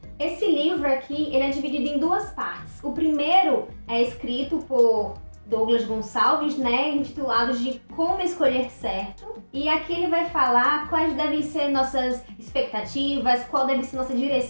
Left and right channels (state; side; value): inverted; both; correlation -1.00